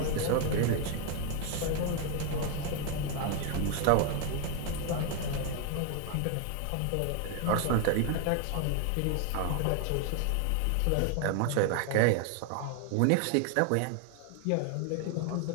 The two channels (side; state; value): both; different; correlation 0.01